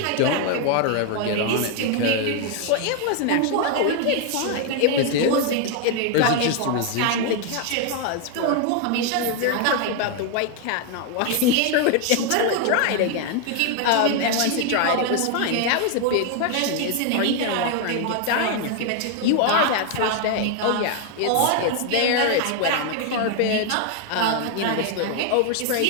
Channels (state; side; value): different; both; correlation 0.01